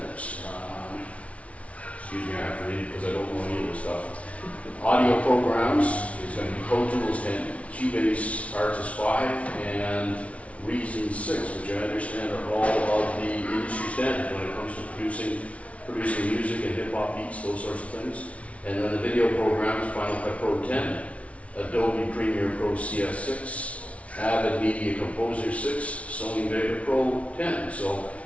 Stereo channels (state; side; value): late; right; 0.064 ms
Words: Excuse me, I have to read it because I don't know any of this stuff. Audio programs is going to be Pro Tools 10, Cubase Artist 5, and Reason 6, which I understand are all of the industry standards when it comes to producing music and hip-hop beats, those sorts of things. And then the video programs, Final Cut Pro 10, Adobe Premiere Pro CS6, Avid Media Composer 6, Sony Vega Pro 10. So